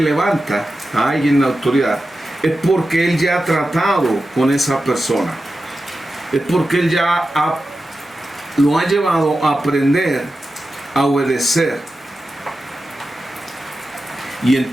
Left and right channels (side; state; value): both; normal; correlation 0.92